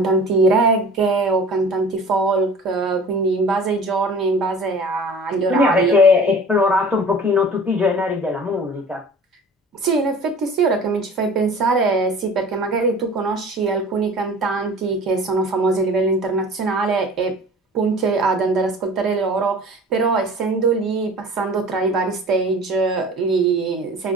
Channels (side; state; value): both; normal; correlation 0.43